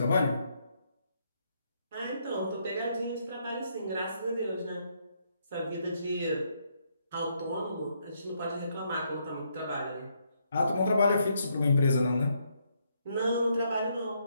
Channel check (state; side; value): inverted; both; correlation -0.75